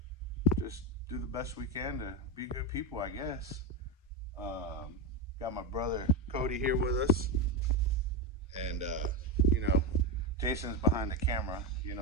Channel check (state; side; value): normal; both; correlation 0.11